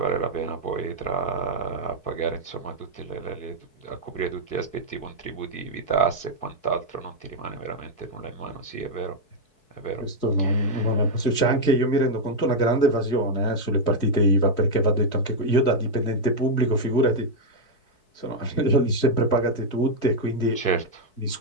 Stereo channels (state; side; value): late; right; 4.6 ms